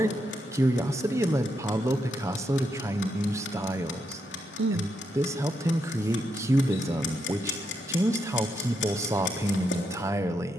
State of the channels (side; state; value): both; normal; correlation 0.80